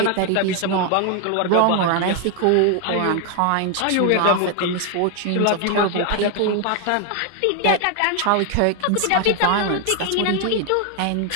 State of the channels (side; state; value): both; different; correlation 0.01